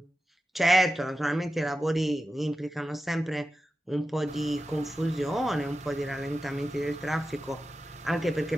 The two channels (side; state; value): both; normal; correlation 0.92